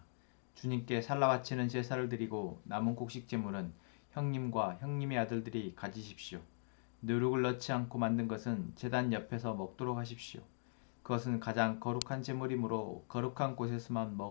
주님께 살라 바치는 제사를 드리고 남은 곡식 제물은 형님과 형님의 아들들이 가지십시오. 누룩을 넣지 않고 만든 것은 제단 옆에서 먹도록 하십시오. 그것은 가장 거룩한 제물이므로 거룩한 곳에서만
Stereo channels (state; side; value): silent; right; digital silence